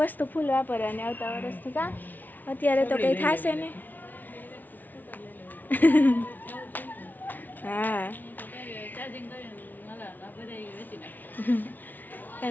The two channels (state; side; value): late; right; 0.082 ms